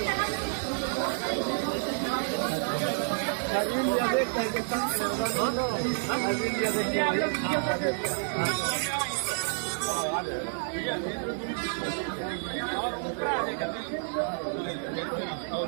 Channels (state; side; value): silent; left; 58 dB below the other